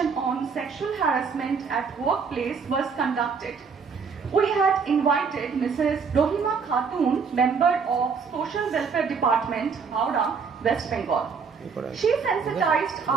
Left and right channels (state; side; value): quieter; left; 5.6 dB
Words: on sexual harassment at workplace was conducted. We had invited Mrs. Rohima Khatun, member of Social Welfare Department, Howrah, West Bengal. She sensitized